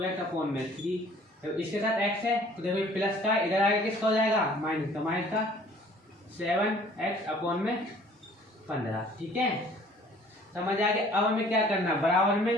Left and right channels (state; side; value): normal; both; correlation 0.54